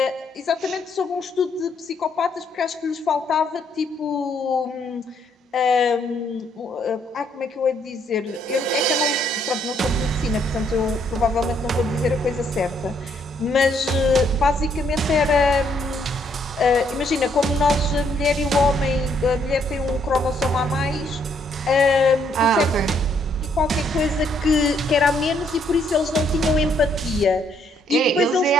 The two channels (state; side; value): normal; both; correlation 0.70